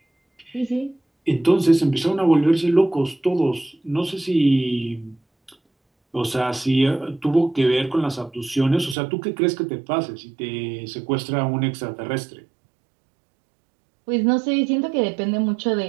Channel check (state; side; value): drops out; left; at 9.0 s